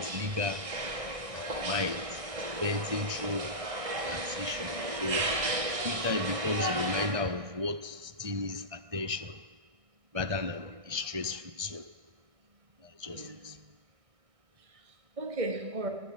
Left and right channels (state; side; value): late; left; 1.6 ms